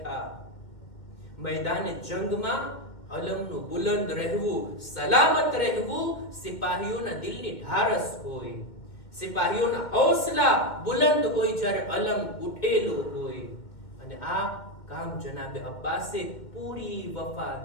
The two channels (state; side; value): late; right; 2.1 ms